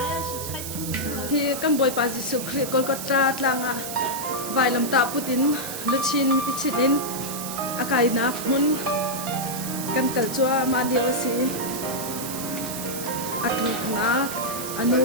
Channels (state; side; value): noise; right; hiss, 7 dB below the sound